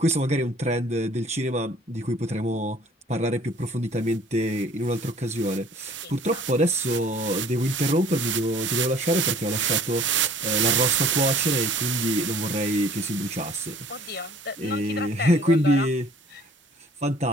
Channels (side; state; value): both; normal; correlation 0.53